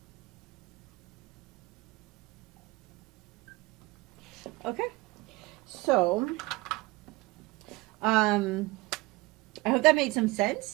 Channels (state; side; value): quieter; left; 21.8 dB